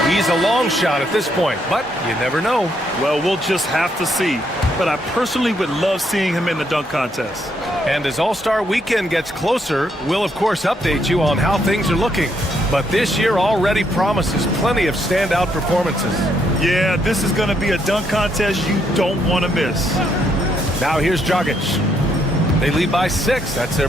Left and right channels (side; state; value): both; normal; correlation 0.74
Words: He's a long shot at this point, but you never know. Well, we'll just have to see. But I personally would love seeing him in the dunk contest. And as All-Star Weekend gets closer, we'll of course update you on how things are looking. But this year already promises plenty of standout performances. Yeah, this is going to be a dunk contest you don't want to miss. Now here's Dragic. They lead by 6. That's